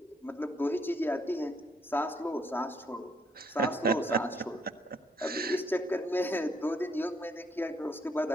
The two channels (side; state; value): both; normal; correlation 0.70